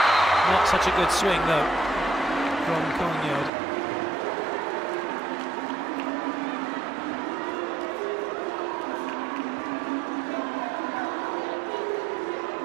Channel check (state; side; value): drops out; left; at 3.5 s